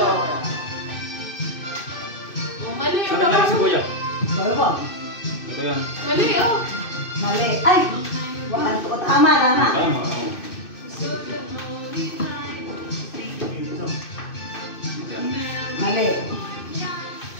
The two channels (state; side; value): late; right; 2.6 ms